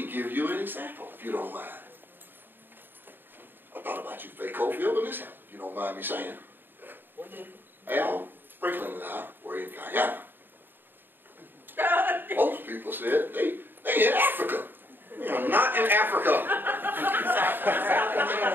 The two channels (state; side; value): late; left; 0.095 ms